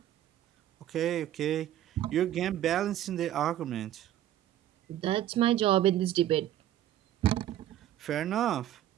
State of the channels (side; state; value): left; quieter; 12.3 dB